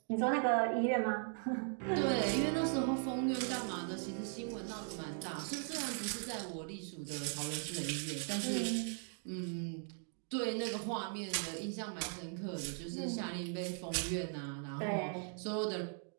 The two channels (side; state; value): left; silent; 52 dB below the other